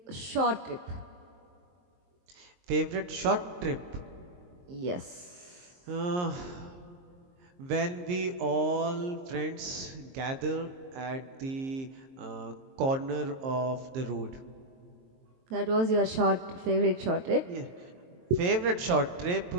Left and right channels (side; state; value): left; late; 23 ms